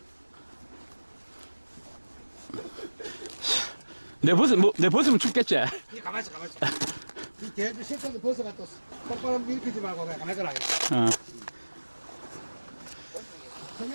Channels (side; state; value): both; inverted; correlation -1.00